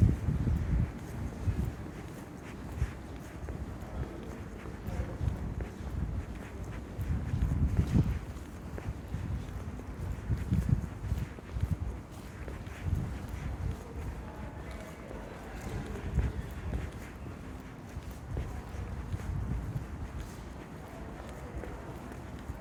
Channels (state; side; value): identical; both; correlation 1.00